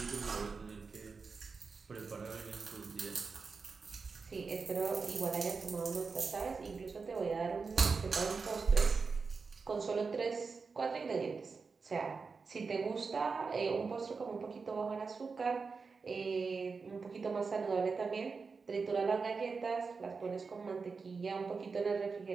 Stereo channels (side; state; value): left; quieter; 4.8 dB